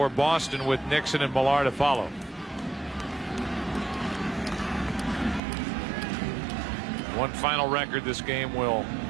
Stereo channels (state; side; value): drops out; left; at 5.4 s